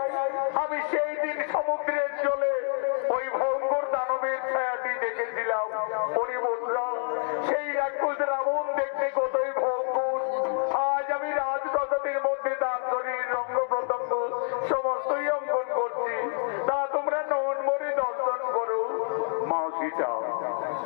আমি সেই দিন সমুদ্রের জলে ওই ভয়ঙ্কর দানবের ছায়াটি দেখেছিলাম। ওরে বন্ধুরা, সেই রাক্ষস রাবণ দেখতে কতই ভয়ঙ্কর। আজ আমি রাজপ্রাসাদের মধ্যে তার শরীর রঙ্গ প্রত্যঙ্গ সমস্তই অঙ্কন করছি, তা তোমরা নন মনে দর্শন করো। মা সীতা,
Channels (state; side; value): silent; right; digital silence